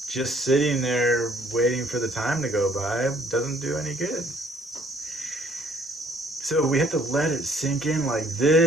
Just sitting there waiting for the time to go by doesn't do any good. So we have to let it sink in like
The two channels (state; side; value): normal; both; correlation 0.62